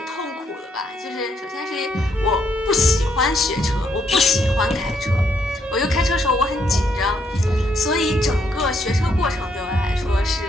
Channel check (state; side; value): normal; both; correlation 0.73